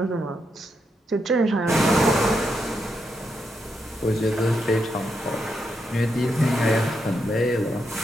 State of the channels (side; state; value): both; normal; correlation 0.82